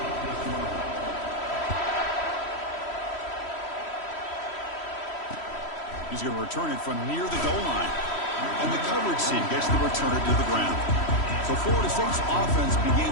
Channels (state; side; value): late; right; 3.1 ms